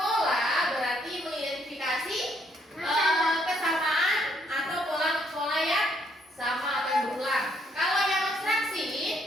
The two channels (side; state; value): both; normal; correlation 0.70